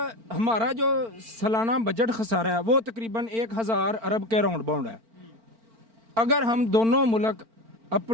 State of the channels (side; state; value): left; late; 4.4 ms